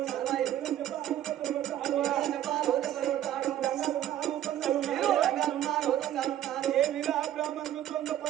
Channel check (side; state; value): left; quieter; 11.9 dB